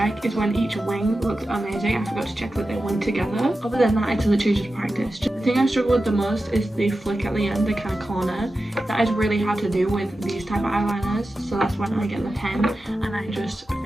is when each wing looked amazing, I forgot to check that they went together. Other than that, it's literally just practice. The thing I struggle with the most is the flick at the end, the kind of corner. That is really hard to do with these type of eyeliners, so that's when I get the pen and I just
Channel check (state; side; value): normal; both; correlation 0.93